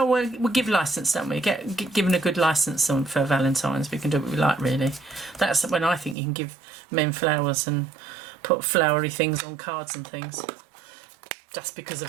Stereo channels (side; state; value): left; drops out; at 6.2 s